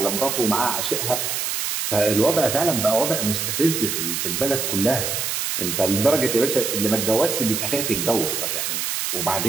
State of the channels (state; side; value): noise; right; hiss, 1 dB below the sound